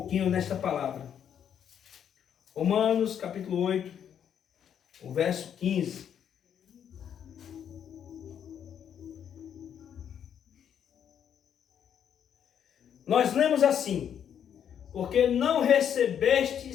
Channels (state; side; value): quieter; right; 8.8 dB